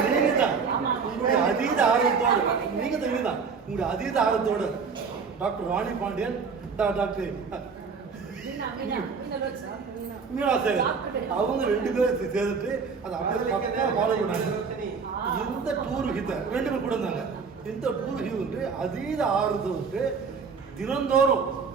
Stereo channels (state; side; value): quieter; left; 5.4 dB